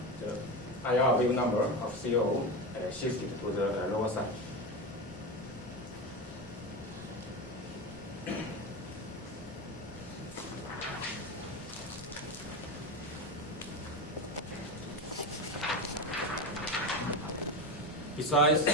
the IR wave number of CO shifted to the lower side. Besides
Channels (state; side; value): normal; both; correlation 0.19